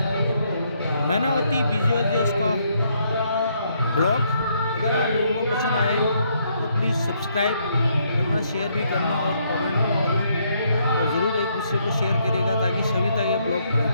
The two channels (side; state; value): both; inverted; correlation -0.72